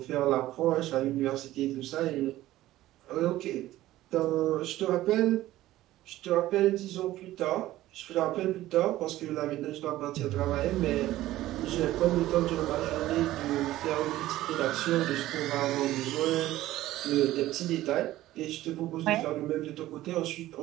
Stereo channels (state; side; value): quieter; left; 15.4 dB